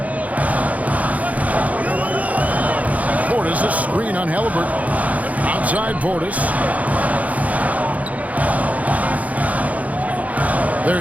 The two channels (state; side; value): late; left; 0.071 ms